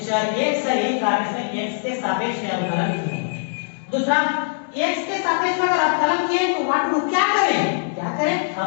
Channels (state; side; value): silent; right; digital silence